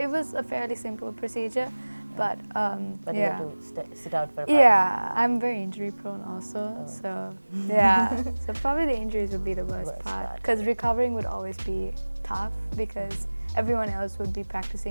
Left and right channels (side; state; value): both; inverted; correlation -1.00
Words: a fairly simple procedure, but But you yeah. have to sit out for a while. Yeah, I'm very injury prone also. Oh. So yeah. So probably the injuries would be the worst Worst part, part. because recovering would always be tough, because everyone else would be